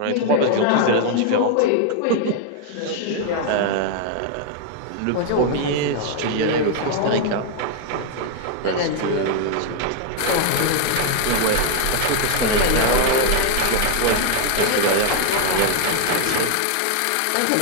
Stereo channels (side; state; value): both; different; correlation 0.00